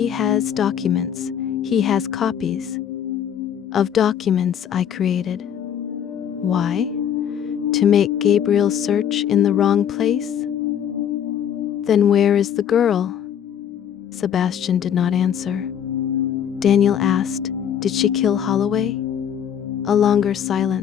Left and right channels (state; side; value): quieter; right; 9.0 dB